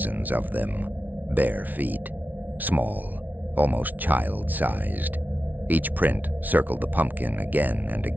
of them, bare feet, small, almost child-sized. Each print circled the pumpkin again and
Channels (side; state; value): left; late; 0.079 ms